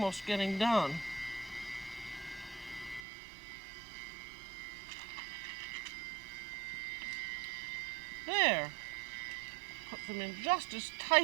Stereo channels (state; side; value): drops out; left; at 3.1 s